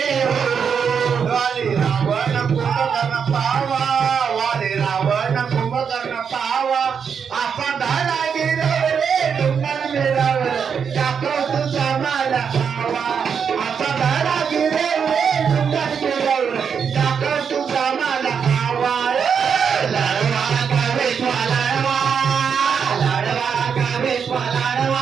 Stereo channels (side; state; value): left; quieter; 6.8 dB